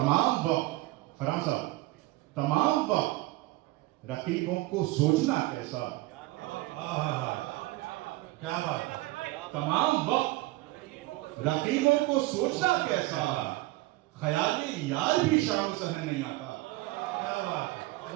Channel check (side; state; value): left; quieter; 19.2 dB